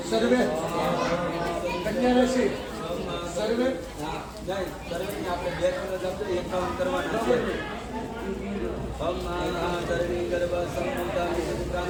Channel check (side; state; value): both; identical; correlation 1.00